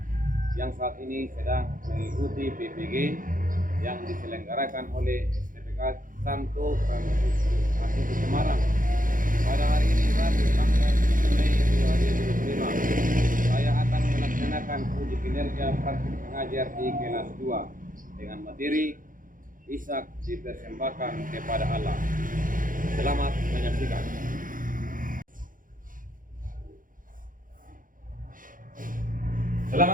yang saat ini sedang mengikuti PPG yang diselenggarakan oleh STPK Santo Franciscus Asisis Semarang. Pada hari ini Rabu tanggal 7 Mei 2025, saya akan melaksanakan uji kinerja praktik pengajar di kelas 2 dengan materi Ishak dipersembahkan kepada Allah. Selamat menyaksikan.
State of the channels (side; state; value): left; late; 0.40 ms